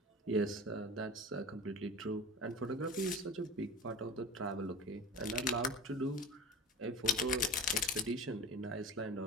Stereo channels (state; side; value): normal; both; correlation 0.33